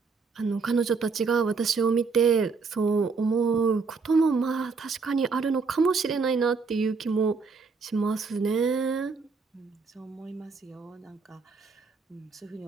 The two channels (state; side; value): quieter; left; 4.7 dB